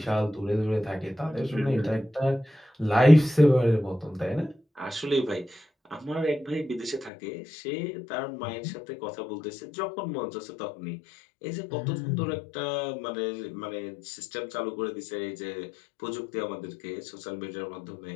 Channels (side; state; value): right; drops out; at 7.1 s